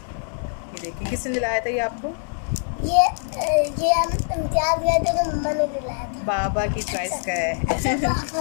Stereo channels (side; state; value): right; silent; 63 dB below the other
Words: ये देखिए, किसने दिलाया था ये आपको? ये हम इम्तियाज गए थे तो मम्मा ने दिलाया था। बाबा की चॉइस का है।